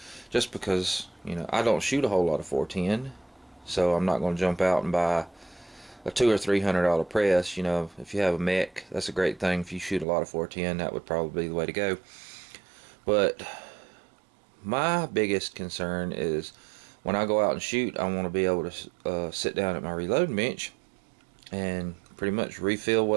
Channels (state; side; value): drops out; left; at 10.1 s